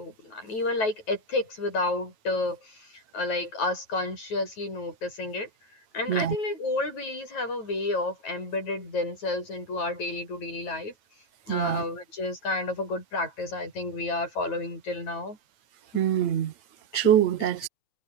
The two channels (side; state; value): right; late; 8.9 ms